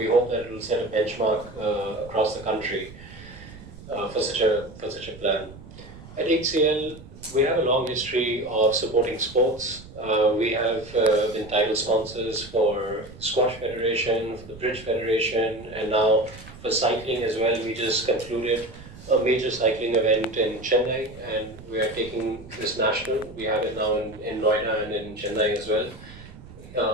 hope that it will set a benchmark across the country for such a plan. At HCL, we have a long history of supporting sports. We have been title sponsors for Squash Federation, for the Bridge Federation, and now for cycling as well. We just concluded a major cycling event in Chennai, and we are taking this national. We have it now in Noida and in Chennai as well.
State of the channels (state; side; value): noise; right; rumble, 17 dB below the sound